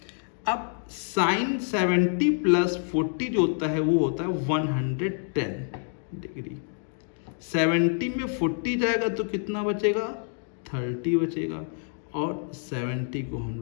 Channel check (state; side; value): silent; right; 60 dB below the other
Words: अब sin 70 प्लस 40 जो होता है वो होता है 110 डिग्री, 70 में 40 जाएगा तो कितना बचेगा 30 बचेगा, और 70 को हम